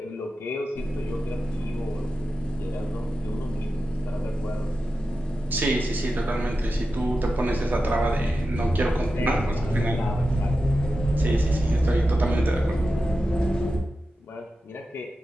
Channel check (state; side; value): normal; both; correlation 0.92